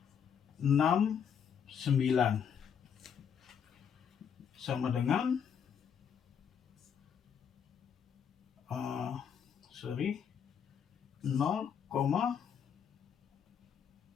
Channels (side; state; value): right; quieter; 7.6 dB